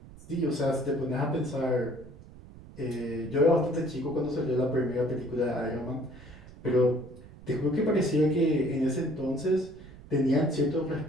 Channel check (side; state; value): right; noise; rumble, 19 dB below the sound